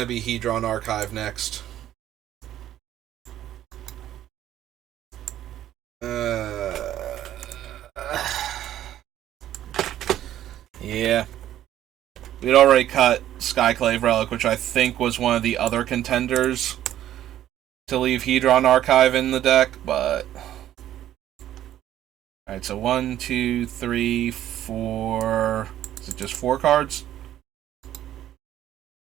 to be Hedron Archive next. Yeah. We'd already cut Skyclave Relic, which I think was one of the other contenders to leave Hedron Archive in the deck, but alright, so 1, 2, 3, 4. Is it just 4 cards?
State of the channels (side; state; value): left; quieter; 12.2 dB